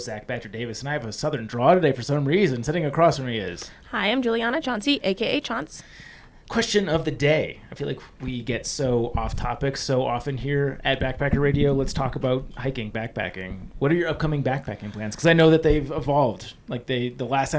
Zach Badger Davis, and I have a southern draw today for some reason. Sitting across from me is... Hi, I'm Juliana Chauncey, a.k.a. Chaunce. Question of the day. I feel like we get so off topic so often here at Backpacker Radio. Let's talk about hiking, backpacking. What are your upcoming backpacking plans? Because I know that they've evolved. Like the last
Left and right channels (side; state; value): both; identical; correlation 1.00